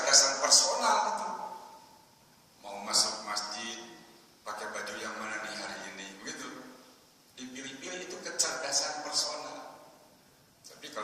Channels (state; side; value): identical; both; correlation 1.00